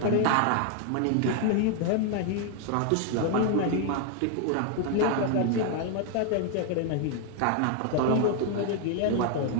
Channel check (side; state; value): both; different; correlation 0.00